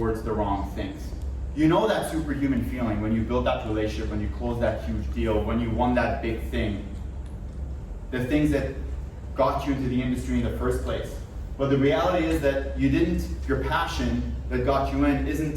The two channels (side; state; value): both; identical; correlation 1.00